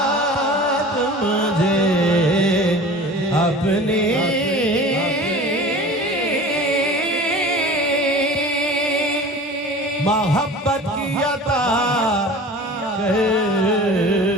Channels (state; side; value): normal; both; correlation 0.39